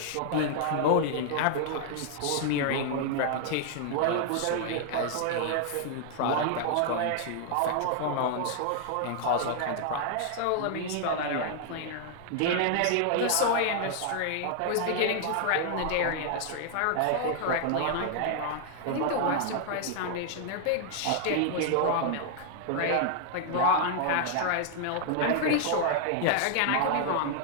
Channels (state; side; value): different; both; correlation 0.00